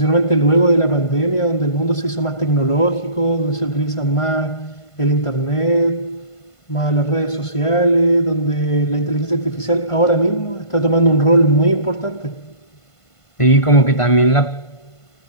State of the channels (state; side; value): late; right; 1.5 ms